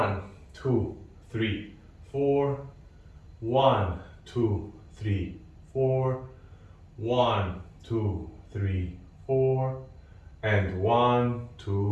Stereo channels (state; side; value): identical; both; correlation 1.00